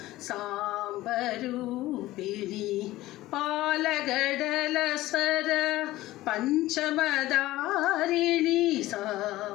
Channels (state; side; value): quieter; right; 16.8 dB